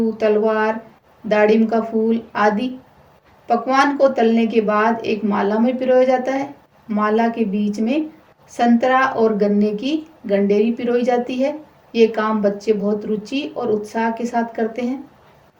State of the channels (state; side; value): identical; both; correlation 1.00